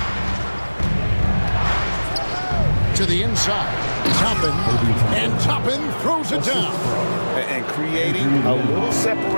To the inside. Toppin. And Toppin throws it down. And creating a little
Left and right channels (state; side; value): inverted; both; correlation -1.00